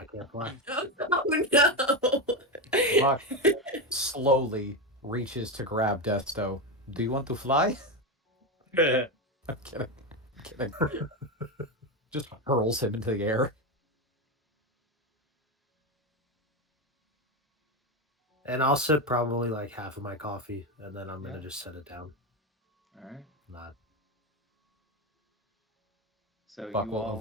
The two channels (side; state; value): both; normal; correlation 0.13